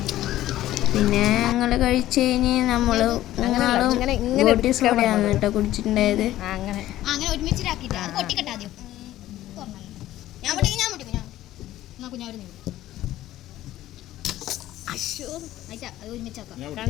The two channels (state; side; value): quieter; right; 14.3 dB